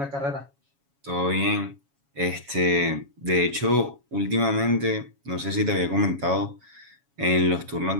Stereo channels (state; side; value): late; left; 7.2 ms